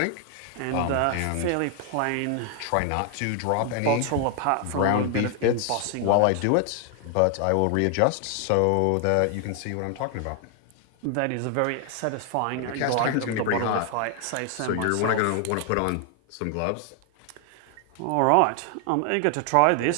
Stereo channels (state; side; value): different; both; correlation 0.00